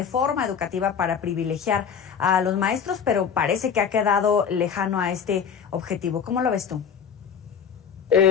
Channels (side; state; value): right; quieter; 7.3 dB